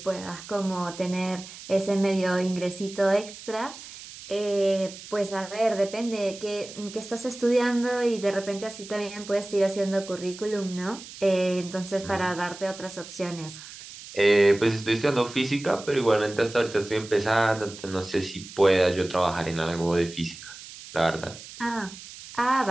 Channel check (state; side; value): noise; right; hiss, 15 dB below the sound